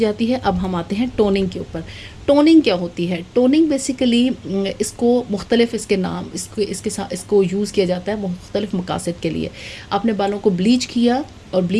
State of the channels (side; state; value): both; identical; correlation 1.00